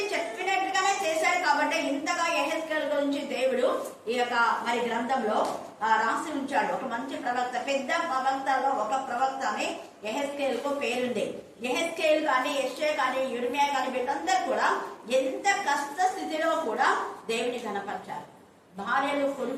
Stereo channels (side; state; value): both; identical; correlation 1.00